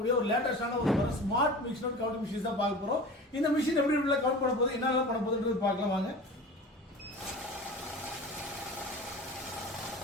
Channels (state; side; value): normal; both; correlation 0.36